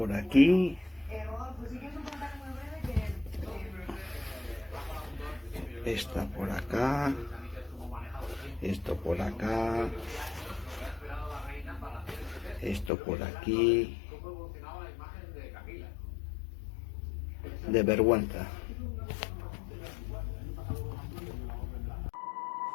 aquí. Esta por acá. Esto por acá. Esto por aquí. De vergüenza.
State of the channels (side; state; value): right; drops out; at 12.9 s